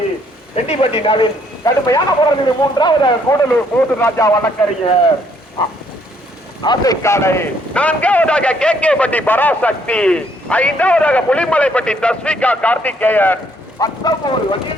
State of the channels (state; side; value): normal; both; correlation 0.67